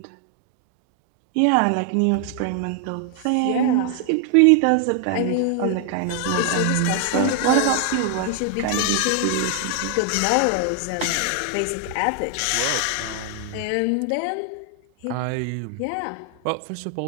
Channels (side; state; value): both; different; correlation 0.00